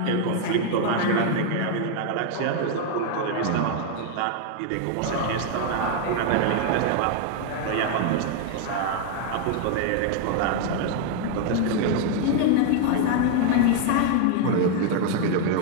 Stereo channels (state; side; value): different; both; correlation 0.00